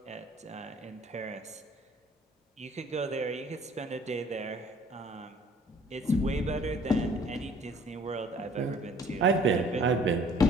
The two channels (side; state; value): both; normal; correlation 0.55